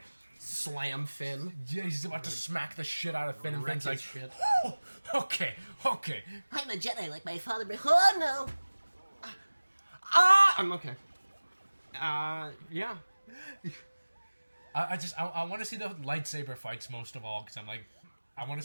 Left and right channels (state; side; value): inverted; both; correlation -1.00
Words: Slam Finn. Yeah, he's about to smack the shit out of Finn, and Wreck Finn's like, his shit. "Oh, okay. I'm a Jedi like my father, but oh no! I'm okay. Yeah. I want to see the lightsaber fights most of all, because I'm like, I want